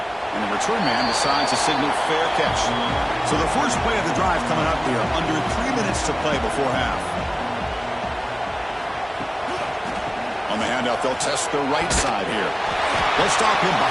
And the return man decides to signal fair catch. So the first play of the drive coming up here. Under 3 minutes to play before half. On the handout, they'll test the right side here. They'll stop him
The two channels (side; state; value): both; identical; correlation 1.00